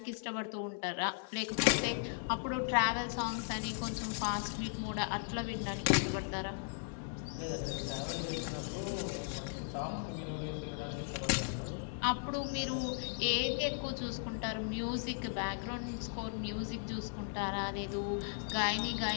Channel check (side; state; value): right; silent; digital silence